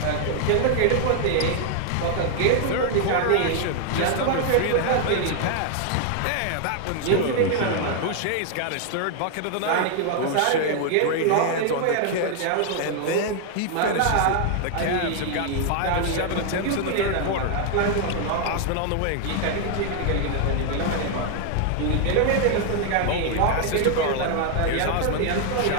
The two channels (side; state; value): both; different; correlation 0.00